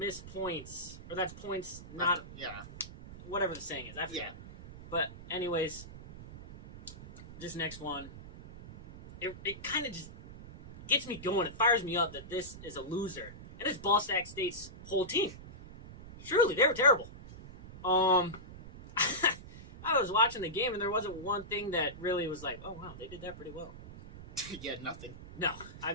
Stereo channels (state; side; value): noise; right; rumble, 15 dB below the sound